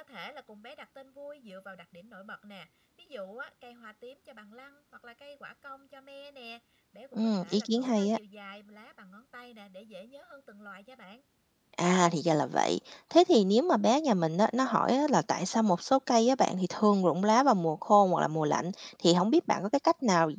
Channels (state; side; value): identical; both; correlation 1.00